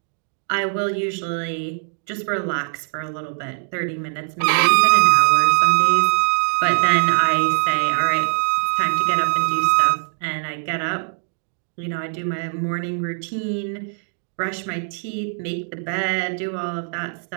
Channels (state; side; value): silent; left; digital silence